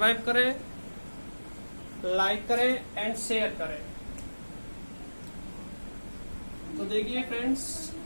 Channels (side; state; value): both; inverted; correlation -1.00